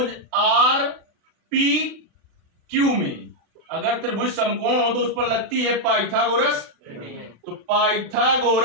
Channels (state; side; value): late; left; 36 ms